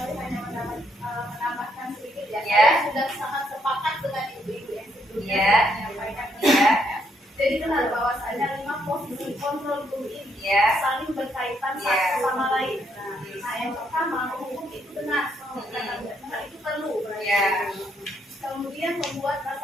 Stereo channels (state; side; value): normal; both; correlation 0.73